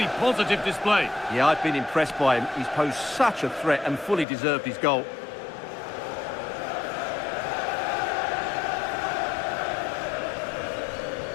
positive display. Yeah, I've been impressed by him. He's posed such a threat and fully deserved his goal.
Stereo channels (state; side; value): drops out; right; at 4.2 s